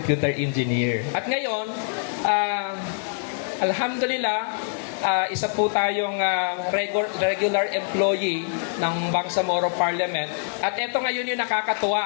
engineer. At ngayon, alhamdulillah, isa po tayong regular employee ng Bangsamoro Parliament. At ito ngayon yung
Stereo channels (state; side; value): silent; right; digital silence